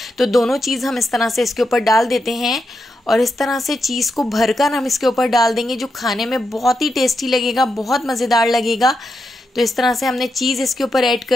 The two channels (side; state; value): both; normal; correlation 0.85